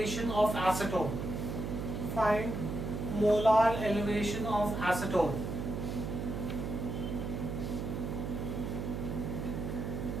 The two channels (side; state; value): right; noise; hum, 4 dB below the sound